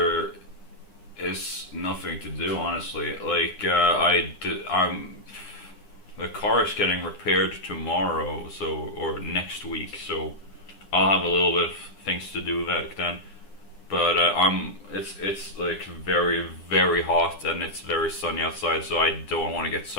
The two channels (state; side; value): late; right; 9.9 ms